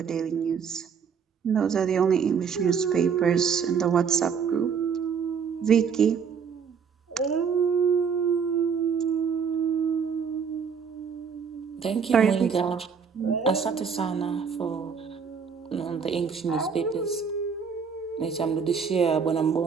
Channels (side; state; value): left; quieter; 6.4 dB